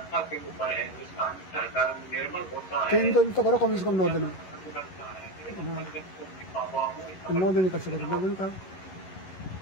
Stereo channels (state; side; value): late; right; 11 ms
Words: के ऊपर है, जिसका सरकार निर्भर होता है। 3 दिन तो करो कम से कम 9 दिन में, 9 दिन कर सकते, 9 दिन का